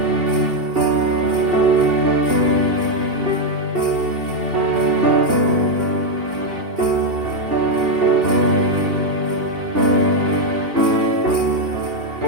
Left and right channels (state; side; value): late; left; 2.8 ms